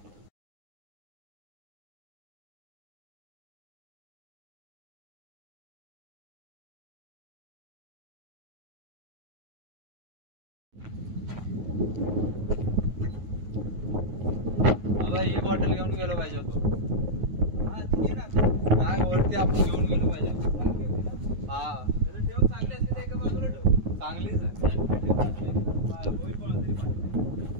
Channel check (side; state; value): left; late; 9.5 ms